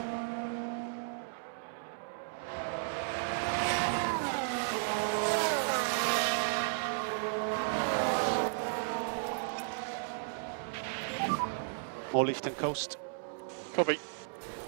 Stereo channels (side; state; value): left; silent; digital silence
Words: More lift and coast. Copy.